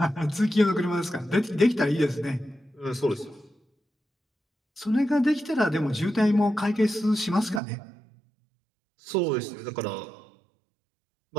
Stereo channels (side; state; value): left; drops out; at 7.6 s